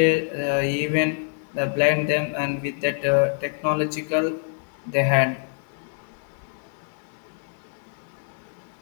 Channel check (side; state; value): right; silent; 61 dB below the other